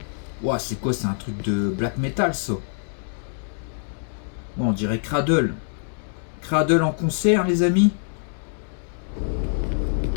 Ouah, c'est quoi? C'est un truc de black metal ça. Bon, on dirait Cradle. Cradle en concert les amis.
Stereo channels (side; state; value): right; silent; digital silence